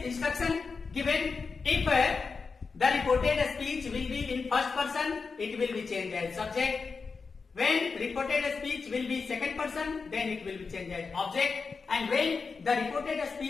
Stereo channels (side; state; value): right; quieter; 4.8 dB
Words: given. If the reported speech will be in first person, it will be changed as subject. When reported speech will be second person, then it will be changed as object. And when the reported